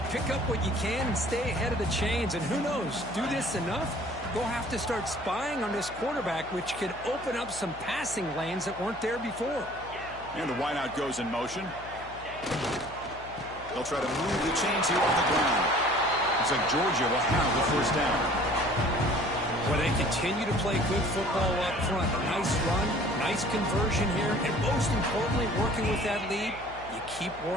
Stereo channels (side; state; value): left; noise; hum, 18 dB below the sound